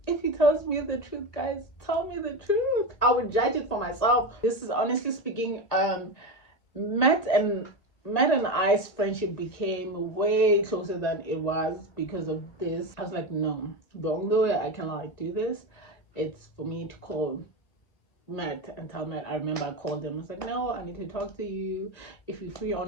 if he tells me the truth, guys, tell me the truth. I would judge it for myself. This is honestly speaking, Matt and I's friendship became way closer than it was because of this. I was like, no, the only way I can like do this, it's for me to call Matt and tell Matt. I remember I called him. I was like, no, I need to talk to you. If you're free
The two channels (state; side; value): late; right; 1.9 ms